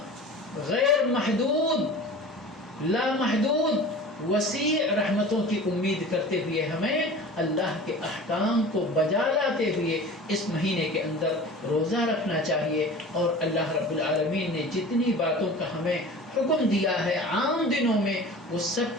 غیر محدود، لامحدود، وسیع رحمتوں کی امید کرتے ہوئے ہمیں اللہ کے احکام کو بجا لاتے ہوئے اس مہینے کے اندر روزہ رکھنا چاہیے۔ اور اللہ رب العالمین نے جتنی باتوں کا ہمیں حکم دیا ہے عام دنوں میں، وہ سب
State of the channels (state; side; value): normal; both; correlation 0.38